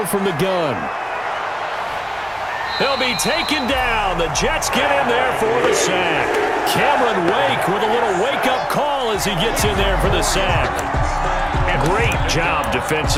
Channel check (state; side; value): identical; both; correlation 1.00